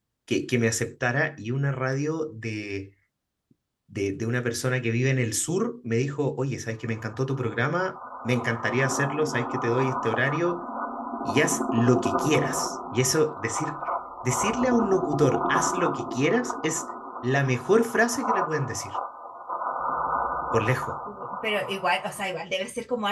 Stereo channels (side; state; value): both; identical; correlation 1.00